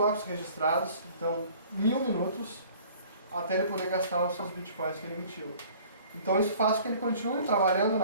registrados, então 1000 minutos, até ele poder gastar os seus bitcoins que ele emitiu. Então isso faz com que ele continue trabalhando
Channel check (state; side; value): inverted; both; correlation -0.51